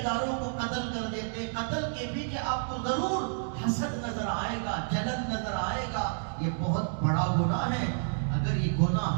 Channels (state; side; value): silent; left; digital silence